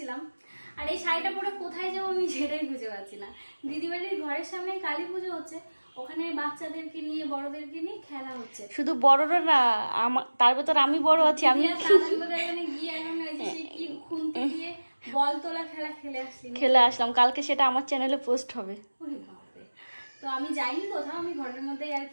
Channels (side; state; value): both; inverted; correlation -1.00